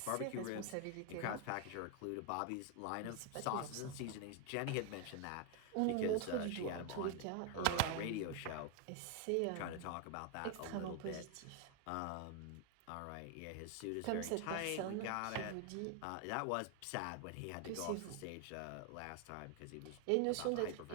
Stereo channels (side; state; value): both; different; correlation 0.01